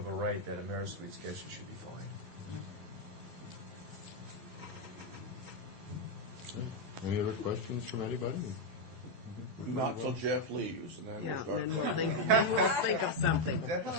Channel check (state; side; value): late; left; 12 ms